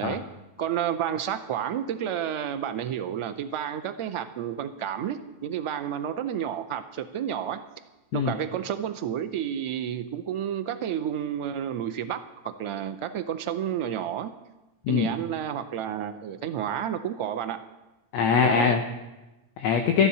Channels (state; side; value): late; right; 9.0 ms